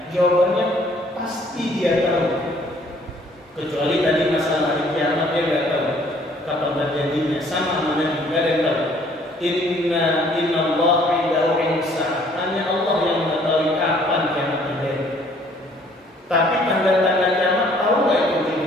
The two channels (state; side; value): normal; both; correlation 0.60